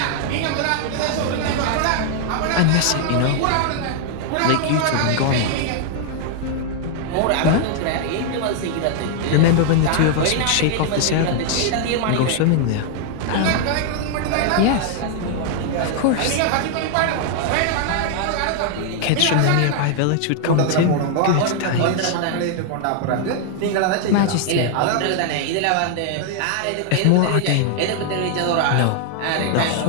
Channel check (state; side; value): different; both; correlation 0.00